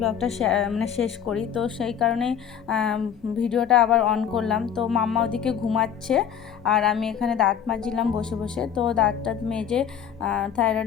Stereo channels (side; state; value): right; quieter; 8.5 dB